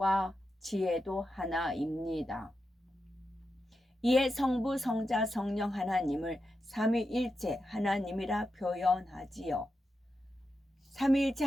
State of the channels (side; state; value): both; normal; correlation 0.88